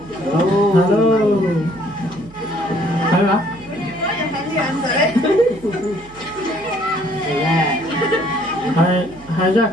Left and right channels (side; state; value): right; noise; hum, 22 dB below the sound